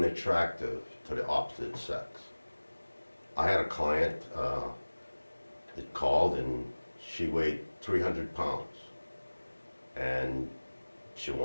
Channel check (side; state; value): both; inverted; correlation -1.00